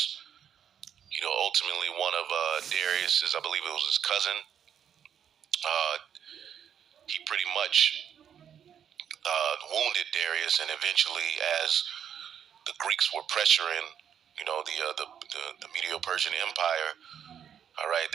You know, ultimately one of Darius's, I believe it was his cousin, he pretty much wounded Darius, and eventually, as the Greeks were pressuring, you know, the Medo-Persian Empire, all right,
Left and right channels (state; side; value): quieter; left; 8.7 dB